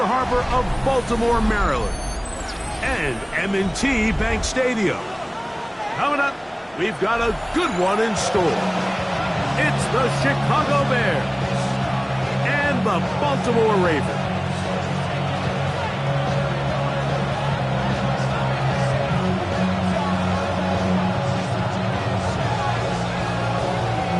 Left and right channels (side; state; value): both; identical; correlation 1.00